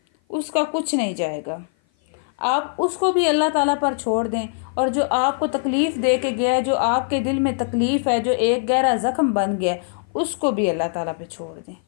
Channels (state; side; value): silent; right; 55 dB below the other